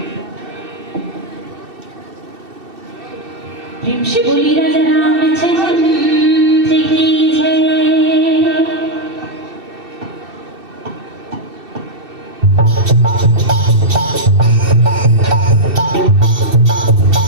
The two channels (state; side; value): late; left; 2.7 ms